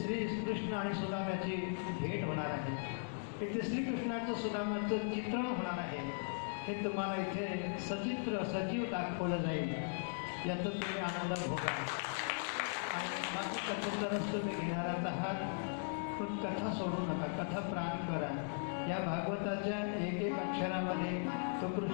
श्रीकृष्ण आणि सुदाम्याची भेट होणार आहे. इथे श्रीकृष्णाचं सुदामाचं चित्रण होणार आहे. हे तुम्हाला इथे सचित्र सजीव दाखवलं जाईल, याचा तुम्ही आनंद भोगा. कथेतरच तुम्ही घेणारच आहात, पण कथा सोडू नका, कथा प्राण करा. या भागवताच्या एक एक अक्षरामध्ये तो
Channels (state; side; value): silent; right; digital silence